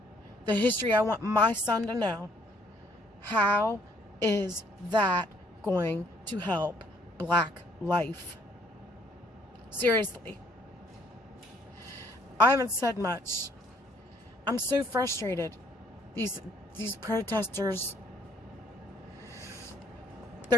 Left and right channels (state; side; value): normal; both; correlation 0.64